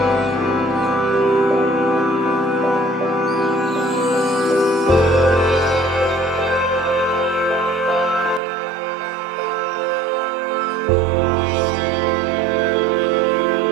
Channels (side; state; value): left; drops out; at 8.4 s